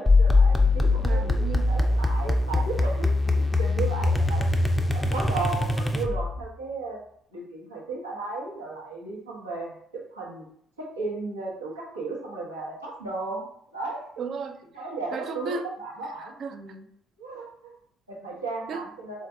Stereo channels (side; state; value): both; normal; correlation 0.84